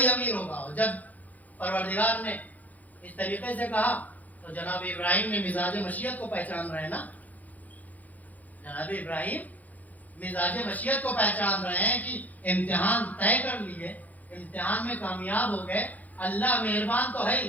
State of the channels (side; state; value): right; late; 0.078 ms